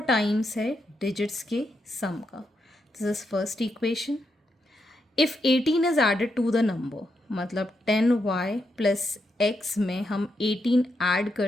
टाइम्स है डिजिट्स के सम का. This is first equation. If 18 is added to the number, मतलब 10y प्लस x में हम 18 ऐड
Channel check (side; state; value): both; normal; correlation 0.82